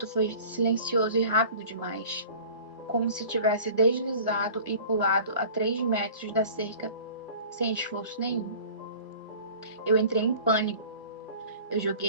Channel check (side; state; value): both; inverted; correlation -0.44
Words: foi silencioso e rápido demais, como se tivesse deslizado e pulado a 3 metros da cerca sem esforço nenhum. Eu entrei em pânico. Eu